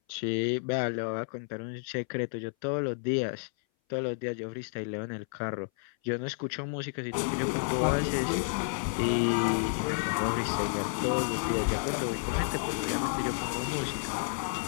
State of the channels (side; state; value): right; silent; 57 dB below the other